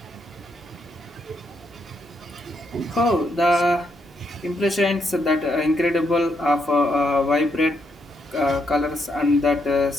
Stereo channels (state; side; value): normal; both; correlation 0.78